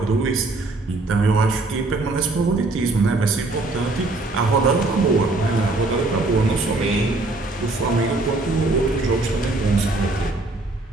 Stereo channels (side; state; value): left; quieter; 3.1 dB